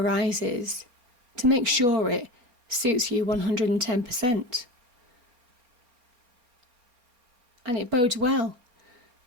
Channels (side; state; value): left; late; 4.3 ms